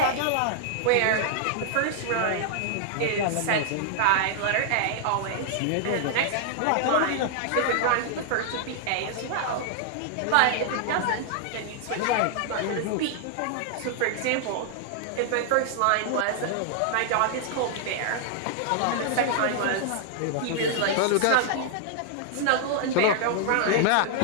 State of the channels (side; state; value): both; different; correlation -0.01